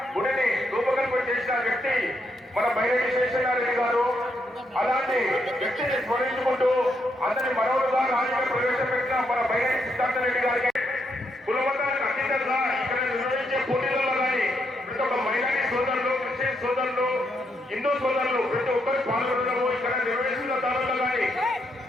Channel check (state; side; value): normal; both; correlation 0.78